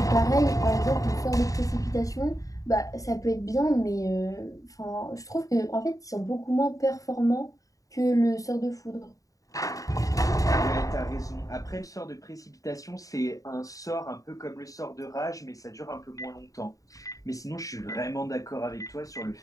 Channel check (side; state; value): right; late; 0.16 ms